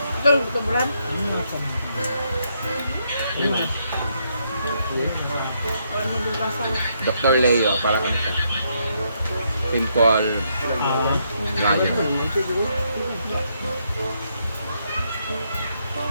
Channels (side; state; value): both; inverted; correlation -0.76